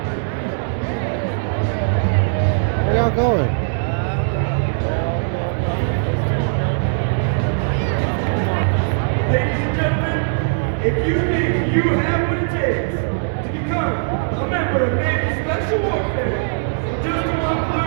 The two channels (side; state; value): left; silent; digital silence